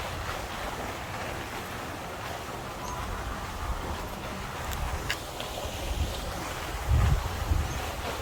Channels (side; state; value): both; identical; correlation 1.00